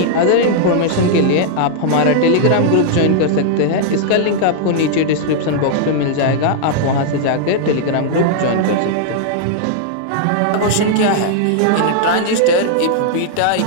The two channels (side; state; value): both; different; correlation -0.01